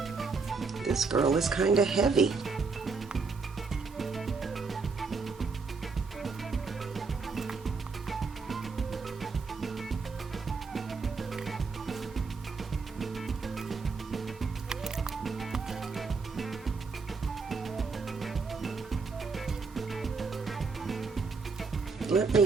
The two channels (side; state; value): left; quieter; 4.6 dB